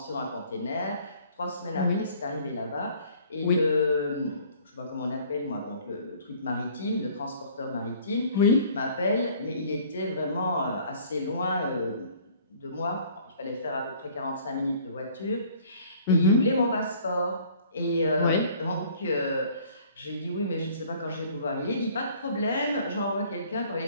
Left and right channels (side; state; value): both; inverted; correlation -0.54